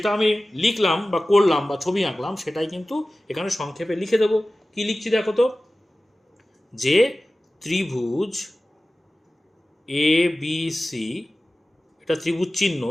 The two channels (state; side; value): normal; both; correlation 0.96